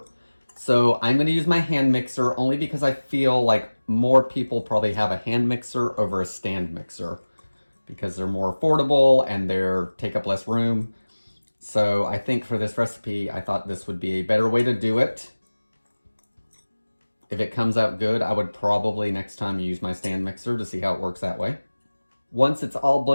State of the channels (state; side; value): inverted; both; correlation -1.00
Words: So I'm going to use my hand mixer only because I feel like more people probably have a hand mixer over a stand mixer, because they're more affordable and they take up less room. So I think for this recipe, I thought this would be a better way to do it. If it comes out good, I would probably next time use my stand mixer to see how it works that way. Once it's all